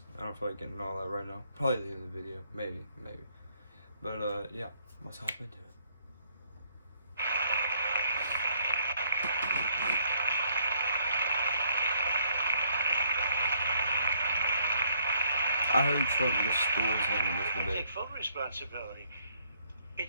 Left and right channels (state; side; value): inverted; both; correlation -0.68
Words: I don't feel like getting all that right now. Probably at the end of the video, maybe. But yeah, let's hop into it. I heard Trump destroys him in this I debate. take full responsibility.